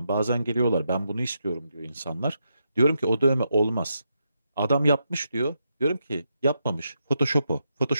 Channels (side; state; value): both; inverted; correlation -0.82